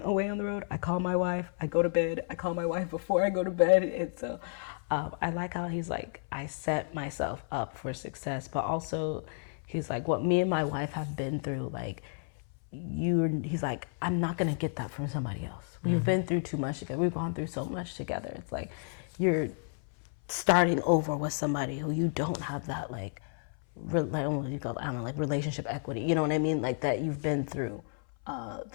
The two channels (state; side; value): silent; right; 57 dB below the other